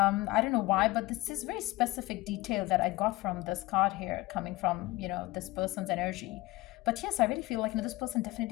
don't know why, but this is very specific detail that I got from this card here, coming from, this person's energy. But yes, I really feel like, this person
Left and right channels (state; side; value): quieter; right; 19.4 dB